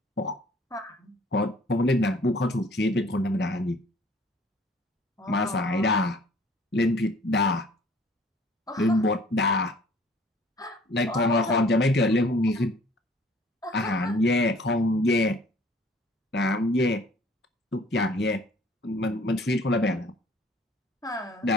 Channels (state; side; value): normal; both; correlation 0.55